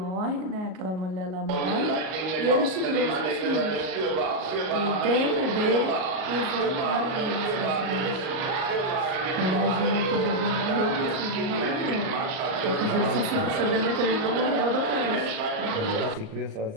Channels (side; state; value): left; late; 38 ms